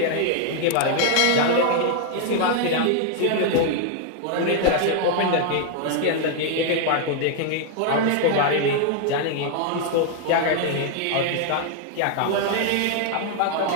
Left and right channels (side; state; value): both; different; correlation 0.00